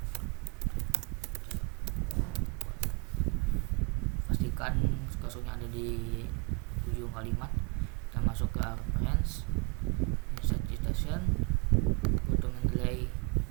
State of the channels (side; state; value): left; quieter; 30.2 dB